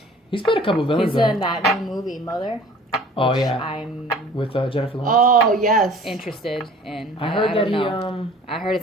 He's played a couple villains. He's in that new movie, Mother. Oh yeah. I'm with Jennifer Lawrence. Oh yes. Interested in. I heard that I heard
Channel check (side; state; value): both; normal; correlation 0.48